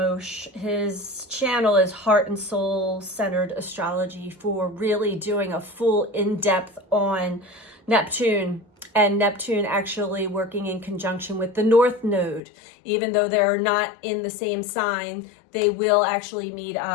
His channel is Heart and Soul Centered Astrology, for really doing a full in-depth on Neptune. And Neptune actually working in conjunction with the North Node. Even though they're not in the same sign, they will actually meet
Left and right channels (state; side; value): drops out; right; at 12.4 s